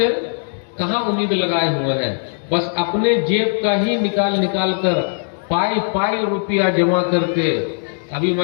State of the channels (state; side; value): silent; right; digital silence